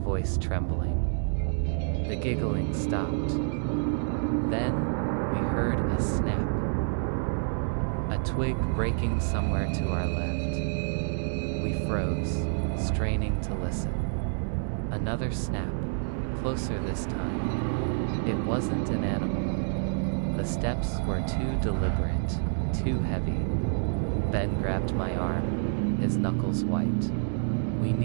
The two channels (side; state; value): left; silent; digital silence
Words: trembling. The giggling stopped. Then we heard a snap. A twig breaking somewhere to our left. We froze, straining to listen. Another snap, closer this time. It wasn't an animal. The steps were too deliberate, too heavy. Ben grabbed my arm, his knuckles white. "We